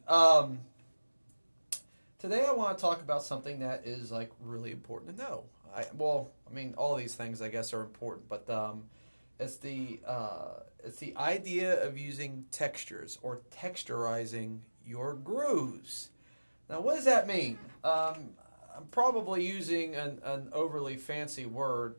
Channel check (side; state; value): both; inverted; correlation -1.00